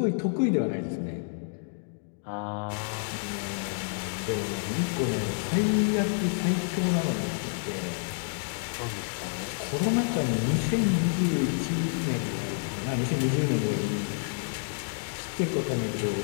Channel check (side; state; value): right; silent; digital silence